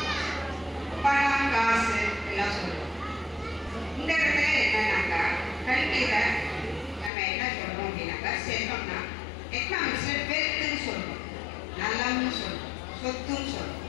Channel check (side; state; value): right; drops out; at 7.1 s